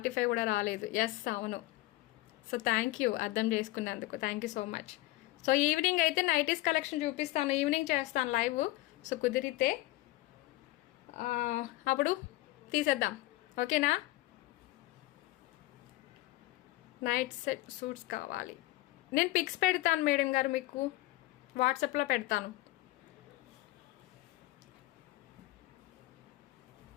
కూడా రాలేదు. ఎస్ అవును. సో థ్యాంక్ యూ అర్థం చేసుకున్నందుకు, thank you so much. So evening అయితే నైటీస్ కలెక్షన్ చూపిస్తాను, ఈవినింగ్ చేస్తాను లైవ్. సో కుదిరితే అప్పుడు తీసేద్దాం, ఓకేనా. నైట్ సెట్ సూట్స్ కావాలి. నేను పిక్స్ పెడతాను మేడం గారు, మీకు వాట్సాప్లో పెడతాను.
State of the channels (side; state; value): right; quieter; 18.4 dB